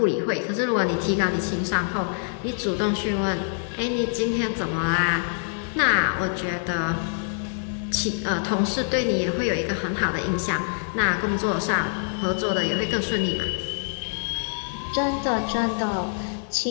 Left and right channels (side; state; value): right; silent; digital silence